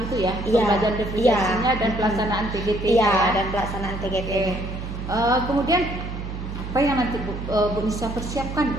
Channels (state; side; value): noise; right; hum, 7 dB below the sound